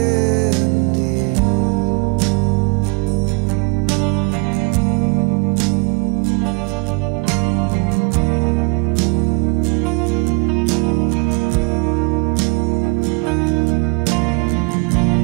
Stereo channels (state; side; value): quieter; left; 30.8 dB